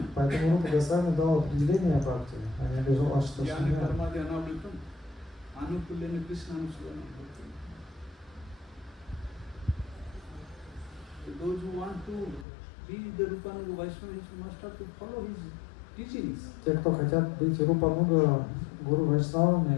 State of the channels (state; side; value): drops out; right; at 12.5 s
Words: Поэтому Рупа Госвами дал определение бхакти, а не обижал Ашта Jnana Шуня. Karma Dhyanavritam, Anukulyana Krishna Anusuvana. Those who want to be the Rupanuga Vaishnavas must have to follow his teachings. Те, кто хотят быть Рупануга Гуру